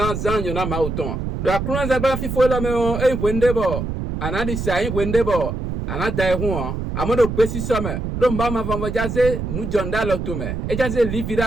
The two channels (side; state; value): right; noise; rumble, 4 dB below the sound